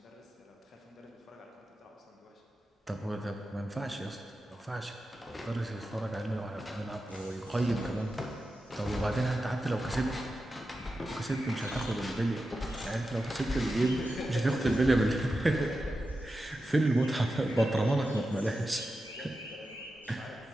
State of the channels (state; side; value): normal; both; correlation 0.91